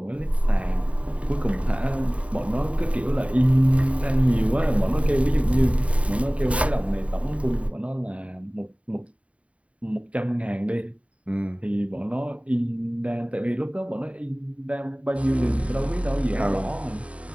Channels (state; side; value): late; left; 0.065 ms